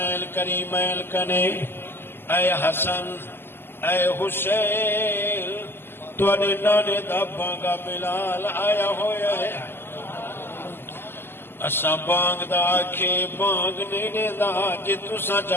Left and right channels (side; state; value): right; late; 0.11 ms